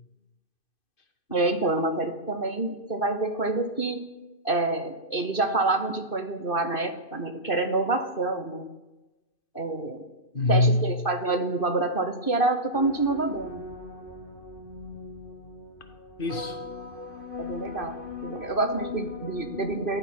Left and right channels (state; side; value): late; right; 2.5 ms